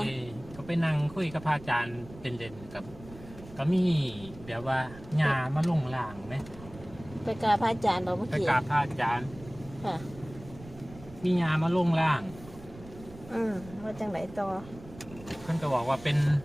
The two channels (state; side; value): noise; right; rumble, 18 dB below the sound